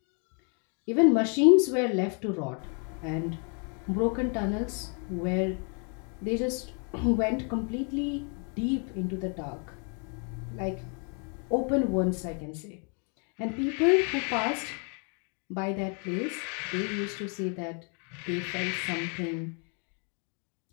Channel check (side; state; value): right; quieter; 39.2 dB